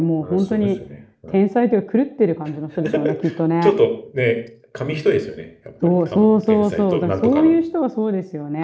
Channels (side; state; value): both; identical; correlation 1.00